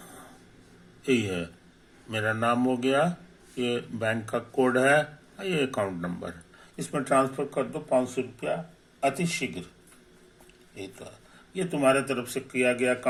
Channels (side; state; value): both; identical; correlation 1.00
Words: यही है। मेरा नाम हो गया, ये बैंक का कोड है, ये अकाउंट नंबर। इसमें ट्रांसफर कर दो 500 रुपया अति शीघ्र। ये तो है, ये तुम्हारे तरफ से किया गया